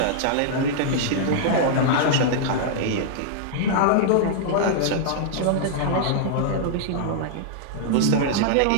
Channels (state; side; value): different; both; correlation -0.01